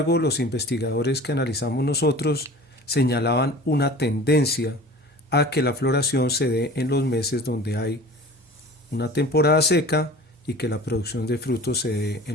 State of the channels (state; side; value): normal; both; correlation 0.41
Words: los investigadores que analizamos nosotros señalaban una tendencia a que la floración se dé en los meses donde hay una temporada seca y que la producción de frutos se dé